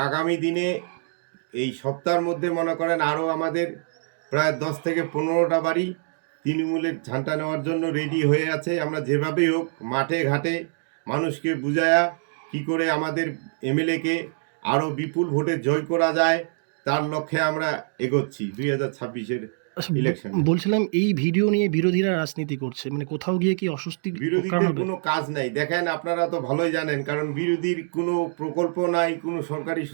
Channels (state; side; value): silent; left; digital silence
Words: আগামী দিনে এই সপ্তাহের মধ্যে মনে করেন আরও আমাদের প্রায় 10 থেকে 15টা বাড়ি তৃণমূলের ঝান্টা নেওয়ার জন্য রেডি হয়ে আছে। আমরা যেভাবেই হোক মাঠে ঘাটে মানুষকে বুঝায়া কি করে আমাদের এমএলএকে আরও বিপুল ভোটে জয় করা যায় তার লক্ষ্যে আমরা এগোচ্ছি 2026-এর ইলেকশন। বলছিলাম এই ভিডিও নিয়ে বিরোধীরা রাজনীতি করছে, কোথাও গিয়ে কি অস্বস্তি কারণ হবে? কোনো কাজ নাই। দেখেন, আপনারা তো ভালোই জানেন, কারণ বিরোধীর কোনো প্রকল্প নাই, কোনো সরকারি